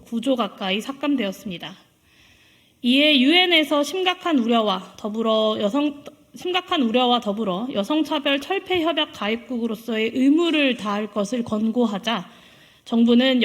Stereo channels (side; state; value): both; identical; correlation 1.00